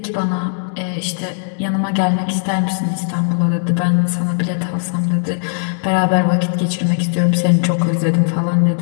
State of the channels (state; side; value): silent; right; digital silence